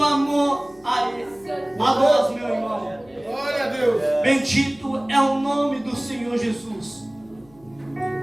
amor a Ele, a nós, meu irmão. Glória a Deus! Bendito é o nome do Senhor Jesus.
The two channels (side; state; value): left; noise; hum, 28 dB below the sound